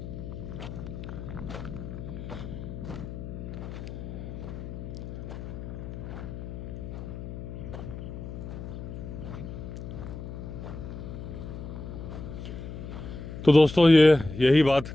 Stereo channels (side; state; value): left; noise; hum, 8 dB below the sound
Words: तो दोस्तों यही बात